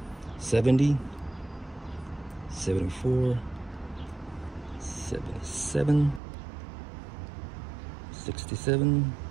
70, 74, 77, 67,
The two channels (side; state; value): left; drops out; at 6.2 s